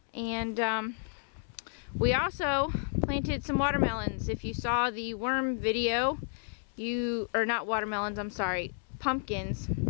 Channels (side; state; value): right; silent; 57 dB below the other